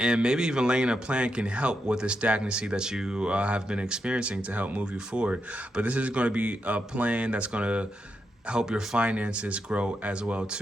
And maybe even laying a plan can help with the stagnancy that you have been experiencing to help move you forward. But this is going to be a plan that's going to help your finances grow as well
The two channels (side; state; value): both; normal; correlation 0.84